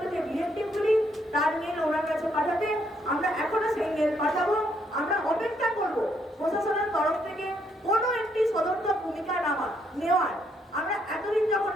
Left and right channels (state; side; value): normal; both; correlation 0.72